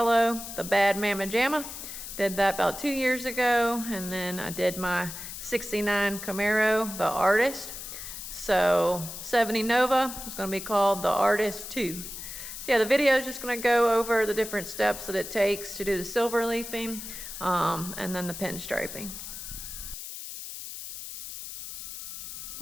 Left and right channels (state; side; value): noise; left; hiss, 9 dB below the sound